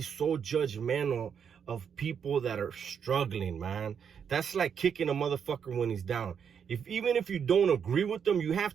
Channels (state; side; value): quieter; left; 7.4 dB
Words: so judgmental of people that are struggling, man. That's like kicking a motherfucker when he's down. Even if you don't agree with them, you